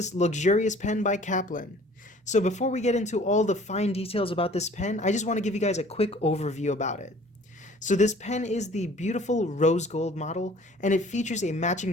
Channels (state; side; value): normal; both; correlation 0.51